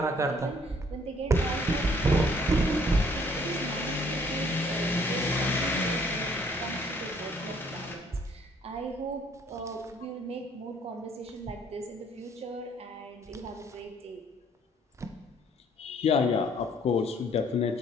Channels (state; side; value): normal; both; correlation 0.62